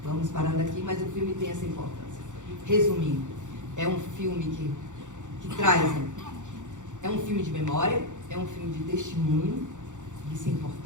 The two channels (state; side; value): late; left; 0.85 ms